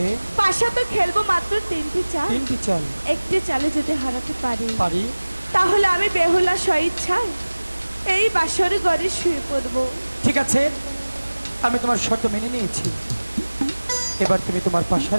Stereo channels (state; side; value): inverted; both; correlation -1.00